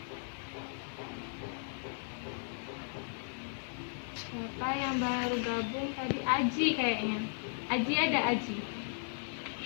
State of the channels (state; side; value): silent; right; digital silence